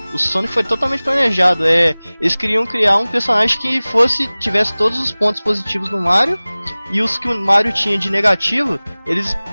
O Sonic foi totalmente planejado. Eles queriam criar um personagem que tivesse todos os pontos positivos do Mario, e os que o Mario tinha de negativo, eles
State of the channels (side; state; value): both; inverted; correlation -0.99